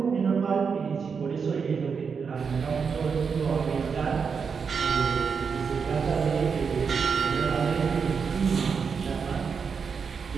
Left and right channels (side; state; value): left; quieter; 5.9 dB